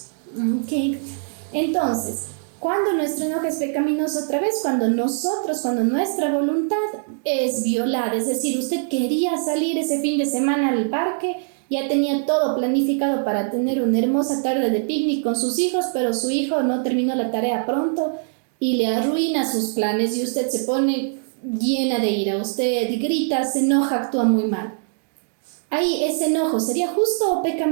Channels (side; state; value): left; silent; digital silence